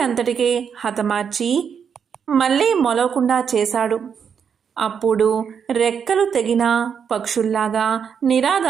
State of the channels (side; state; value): left; quieter; 7.1 dB